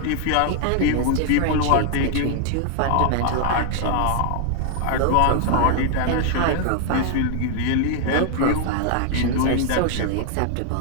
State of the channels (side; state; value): both; different; correlation 0.00